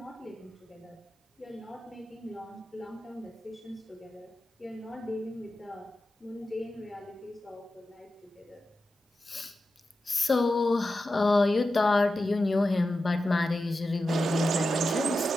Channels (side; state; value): both; normal; correlation 0.91